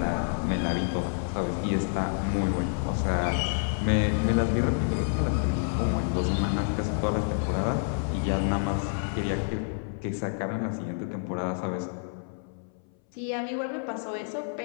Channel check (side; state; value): right; silent; 59 dB below the other